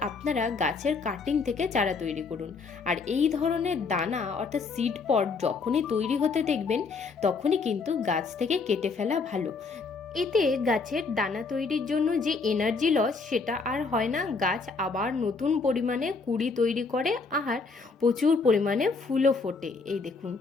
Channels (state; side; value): quieter; right; 4.4 dB